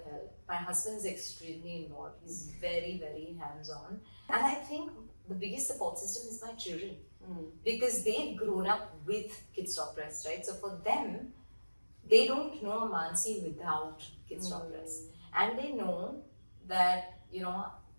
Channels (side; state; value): both; inverted; correlation -1.00